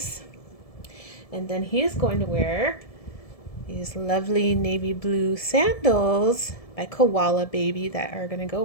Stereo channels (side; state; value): right; late; 1.7 ms